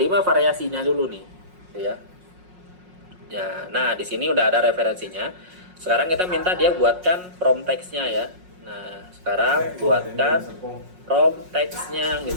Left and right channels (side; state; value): left; late; 5.5 ms